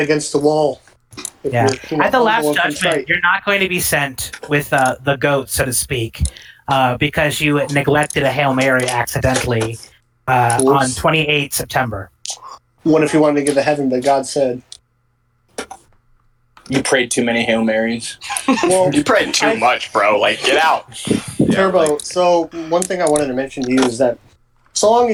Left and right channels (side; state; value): both; identical; correlation 1.00